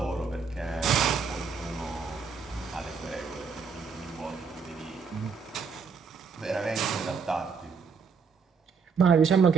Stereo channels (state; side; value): quieter; left; 5.5 dB